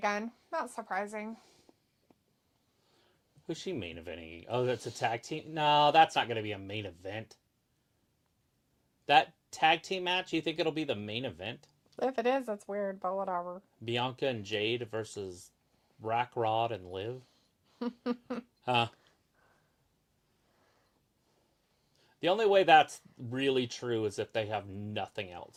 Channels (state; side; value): identical; both; correlation 1.00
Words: Not surprising. Who's she main eventing? Oh, that's a tag team? No, that's not going to be a main event. That tag team match, you think it'll be the main event? If it is, that's weird, but whatever. Bianca and Jade versus Rack Rod and Liv? Huh. The only way that's really true is if they have nothing